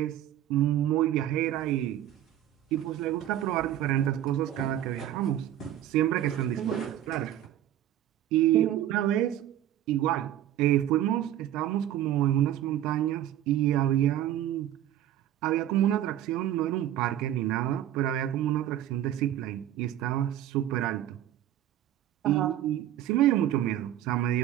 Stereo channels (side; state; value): left; quieter; 12.1 dB